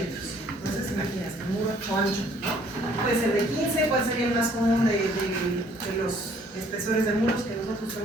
Entonces, imagínense, un muro ancho, ¿no? Puede ser de 15, ¿cuál sería el más común de los espesores de muros que nosotros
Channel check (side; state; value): both; normal; correlation 0.60